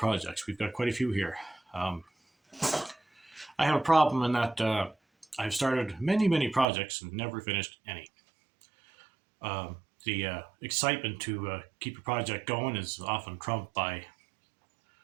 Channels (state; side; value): drops out; left; at 6.7 s